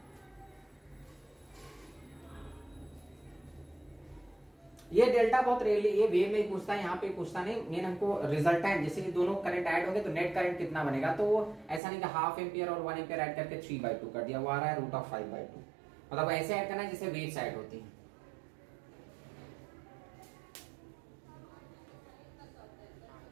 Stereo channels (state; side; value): drops out; left; at 11.8 s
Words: ये डेल्टा बहुत रेयरली, ये वेव में पूछता है, यहाँ पे पूछता नहीं, मेन हमको रिजल्टेंट, जैसे ये दोनों करंट ऐड हो गए तो नेट करंट कितना बनेगा, तो वो ऐसा नहीं कि हाफ एम्पियर और 1 एम्पियर ऐड करके 3/2 कर दिया, वो आ रहा है √5/2। मतलब ऐसे ऐड करना है जैसे वेव्स ऐड होती है।